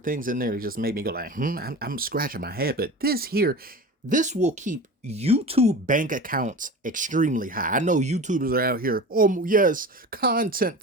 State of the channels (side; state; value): both; normal; correlation 0.33